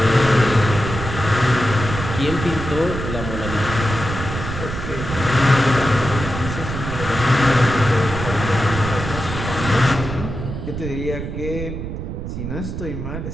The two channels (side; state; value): right; noise; rumble, 6 dB below the sound